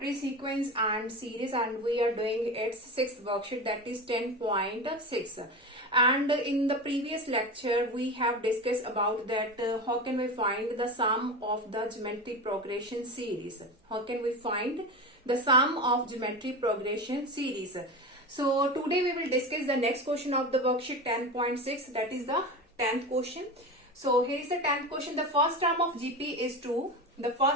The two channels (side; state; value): both; normal; correlation 0.25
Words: is sequence and series, and we are doing its 6th worksheet, that is 10.6. And in the previous lecture we have discussed about that how can we find the sum of the geometry progression series. How can we find the sum of geometry progression series? So today we will discuss the next question of the worksheet 10.6, that is the 10th question. So here is the 10th question. The first term of GP is 2. The